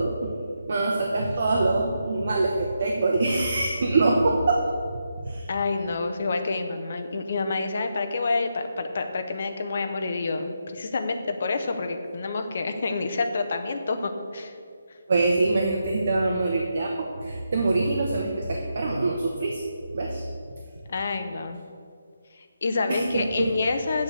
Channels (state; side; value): inverted; both; correlation -0.83